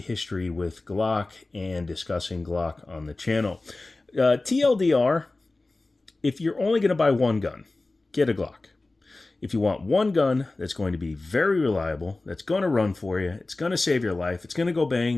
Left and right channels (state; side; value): quieter; right; 3.1 dB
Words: with Glock and discussing Glock on the channel. TLDR, if you're only going to buy one gun, get a Glock. If you want one gun that's going to be very reliable, that's going to run for you, it's going to save your life, it's going to go